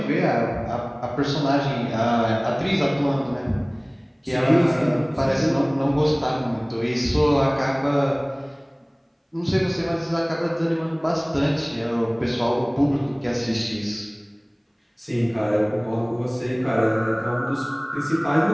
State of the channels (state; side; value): identical; both; correlation 1.00